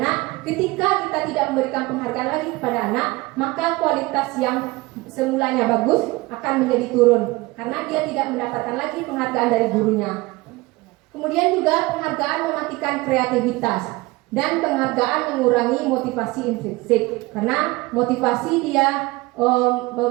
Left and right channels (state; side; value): quieter; left; 21.9 dB